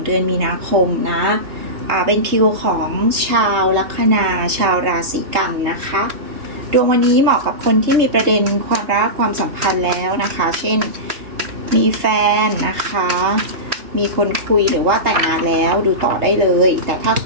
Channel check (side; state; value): left; late; 3.2 ms